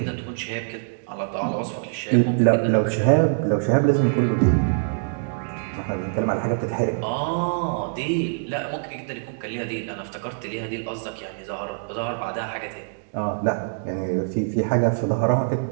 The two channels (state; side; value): silent; left; digital silence